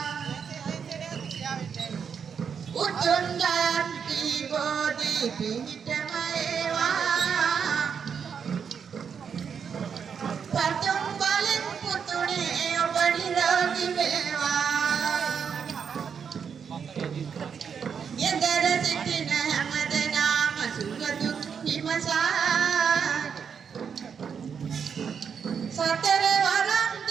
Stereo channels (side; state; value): left; quieter; 6.9 dB